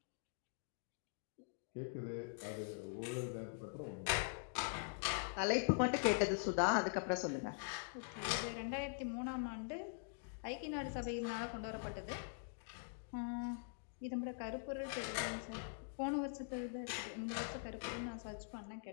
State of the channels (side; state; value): right; silent; digital silence